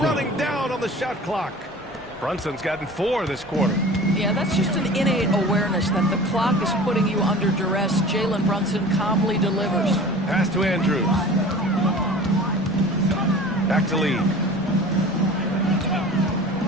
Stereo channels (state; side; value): normal; both; correlation 0.41